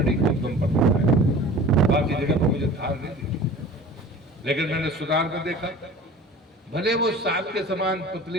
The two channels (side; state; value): both; normal; correlation 0.42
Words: के उद्गम पर दिखा है, बाकी जगह पर मुझे धार नहीं दिखी। लेकिन मैंने सुधार में देखा, भले वो सांप के समान